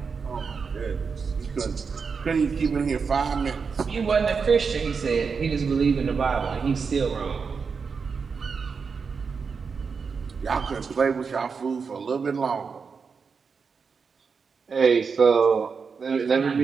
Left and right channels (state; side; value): quieter; left; 5.5 dB